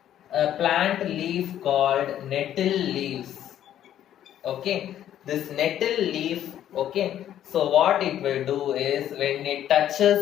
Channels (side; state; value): right; quieter; 11.2 dB